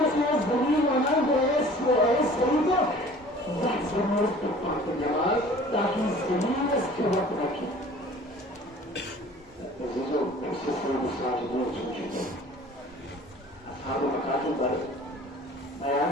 zırın anan ve es Seyyid-i Zah zırın tutmak cemal Taki zırın es kıvat rakip عزیزوں اس سے سب ساجدین سن چکے اصحاب مکاتب پر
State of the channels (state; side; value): normal; both; correlation 0.48